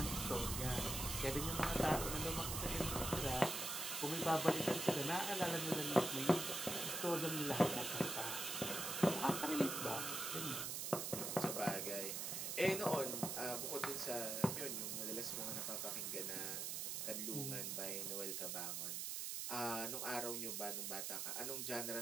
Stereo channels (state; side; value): noise; right; hiss, 2 dB below the sound